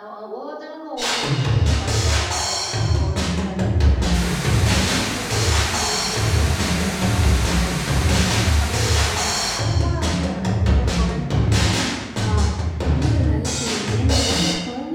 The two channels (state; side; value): identical; both; correlation 1.00